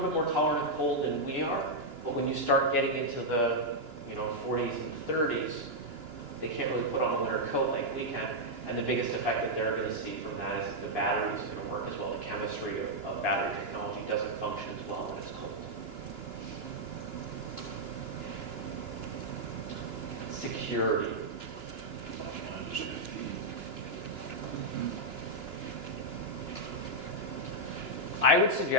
bit more tolerant of cold than we are, but when you start getting into the 40s and 30s, they can't really put on a winter coat like we can, and the biggest effect that they're going to see from that is that the battery is going to work as well. The chemistry of battery technology doesn't function as well when it's cold. Security. I would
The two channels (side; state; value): left; late; 2.9 ms